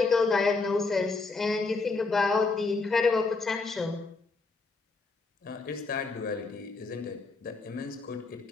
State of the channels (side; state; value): right; quieter; 3.9 dB